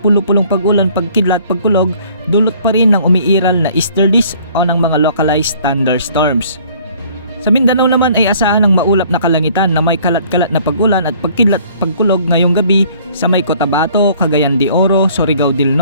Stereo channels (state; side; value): inverted; both; correlation -0.57